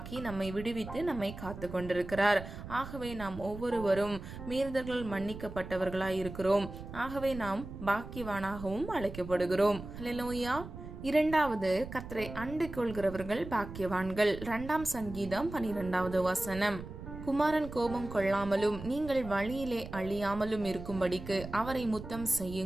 நம்மை விடுவித்து நம்மை காத்து கொண்டிருக்கிறார். ஆகவே நாம் ஒவ்வொருவரும் மீறுதல்கள் மன்னிக்கப்பட்டவர்களாய் இருக்கிறோம். ஆகவே நாம் பாக்கியவானாகவும் அழைக்கப்படுகிறோம். ஹல்லேலூயா. 2வது, கர்த்தரை அண்டிக் கொள்கிறவர்கள் பாக்கியவான்கள். 2ஆம் சங்கீதம் 12வது வசனம். குமாரன் கோபம் கொள்ளாமலும் நீங்கள் வழியிலே அழியாமலும் இருக்கும்படிக்கு அவரை முத்தம்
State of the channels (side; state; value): right; noise; rumble, 11 dB below the sound